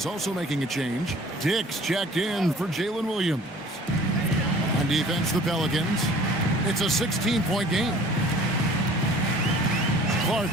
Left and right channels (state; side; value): normal; both; correlation 0.49